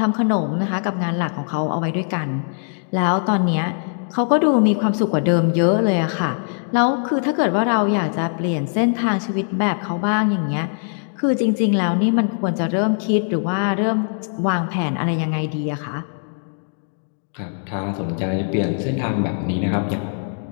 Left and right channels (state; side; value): silent; right; digital silence